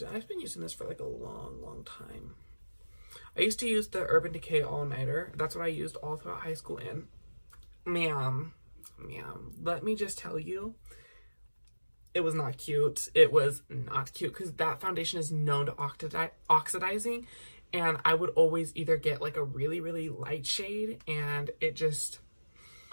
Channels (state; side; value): inverted; both; correlation -1.00